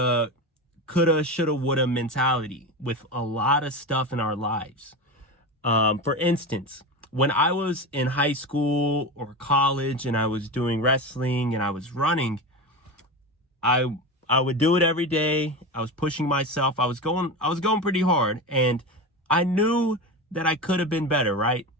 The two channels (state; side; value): normal; both; correlation 0.23